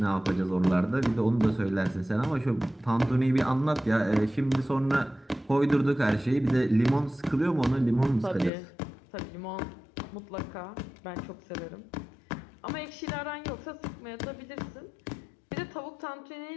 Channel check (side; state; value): right; drops out; at 8.5 s